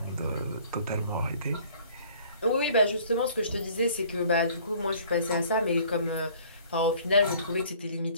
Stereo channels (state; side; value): inverted; both; correlation -0.54